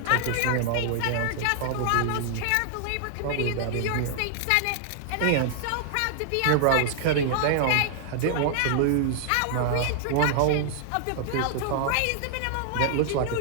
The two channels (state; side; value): different; both; correlation -0.01